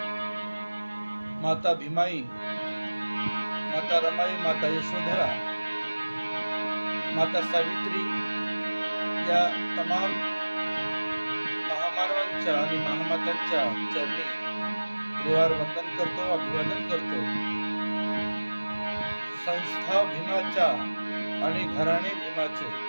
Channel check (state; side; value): inverted; both; correlation -1.00